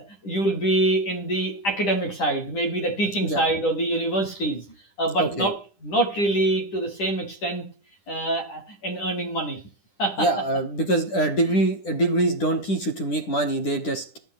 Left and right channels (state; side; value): late; right; 10 ms